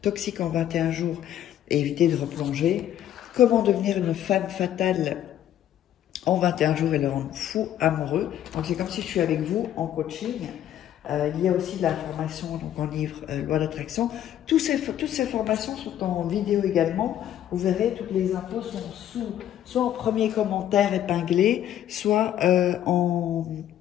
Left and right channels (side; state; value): right; quieter; 11.3 dB